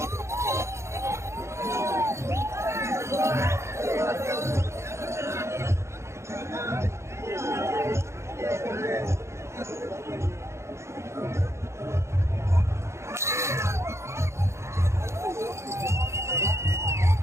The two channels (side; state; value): left; late; 0.13 ms